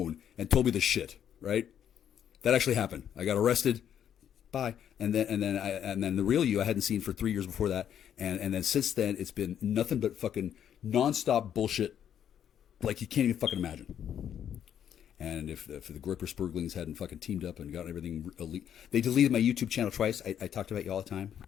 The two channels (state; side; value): quieter; right; 9.4 dB